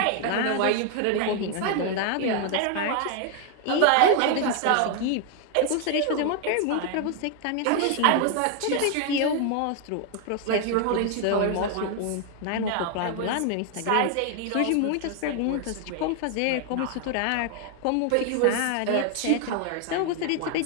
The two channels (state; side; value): different; both; correlation 0.00